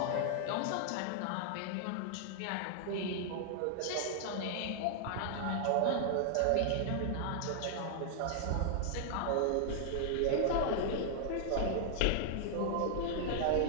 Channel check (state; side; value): different; both; correlation 0.00